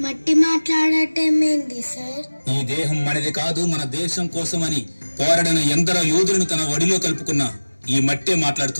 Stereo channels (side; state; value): both; inverted; correlation -1.00